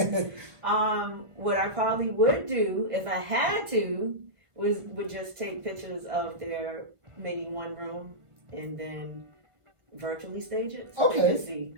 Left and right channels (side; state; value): left; late; 1.5 ms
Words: What I probably would do if I had to would just take pictures of their maybe one room and then virtually stage it so they could see